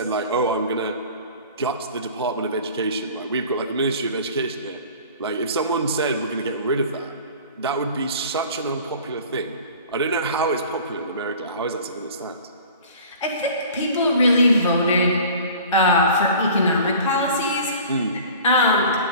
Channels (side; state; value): both; inverted; correlation -0.44